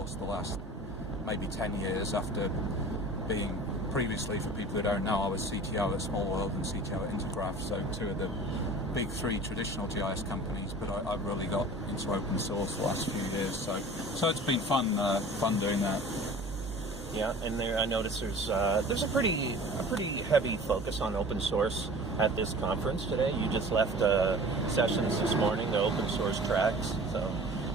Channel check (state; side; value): normal; both; correlation 0.42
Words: the last maybe 10 years, after being previously, for people who don't know, I was CTO at myWorld and CTO at Intergraph, so 2 of the big 3 traditional GIS companies, but I've really got into open source the last few years, so it's been fun doing that. Yeah, and there I noticed there's a pretty heavy focus on open source at this conference today. You just left sessions this morning, the open source tracks. So